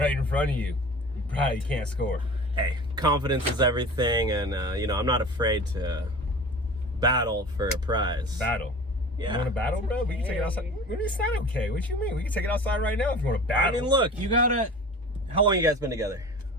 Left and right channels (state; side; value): normal; both; correlation 0.38